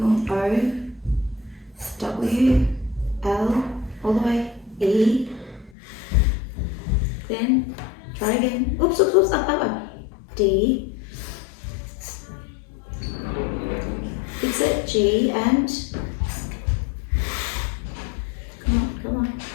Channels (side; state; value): right; drops out; at 5.7 s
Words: more. O. W. L. All the way. E. Then try again. Oops, up. D. Fix it. G and come on.